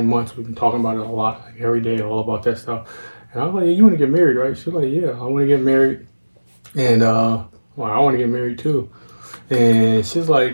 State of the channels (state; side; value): inverted; both; correlation -1.00